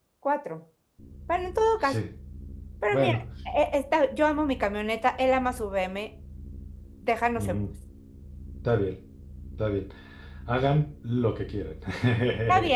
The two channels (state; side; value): identical; both; correlation 1.00